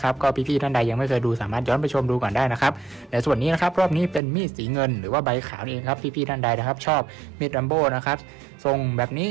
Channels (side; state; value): left; drops out; at 4.2 s